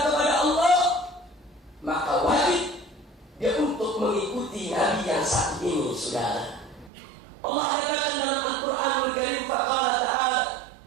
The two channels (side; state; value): left; drops out; at 6.9 s